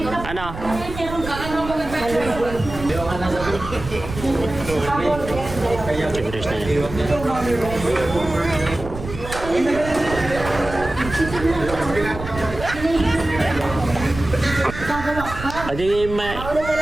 Ano? Tigres na yan. Adi may...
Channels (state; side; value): noise; right; rumble, 10 dB below the sound